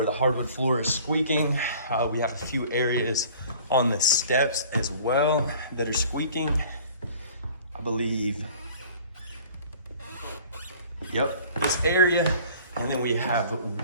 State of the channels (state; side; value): inverted; both; correlation -0.49